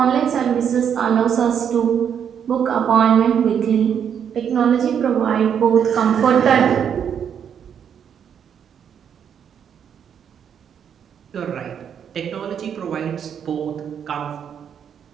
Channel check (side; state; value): left; quieter; 8.1 dB